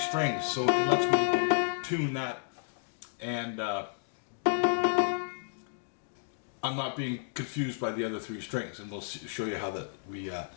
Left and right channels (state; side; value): silent; right; digital silence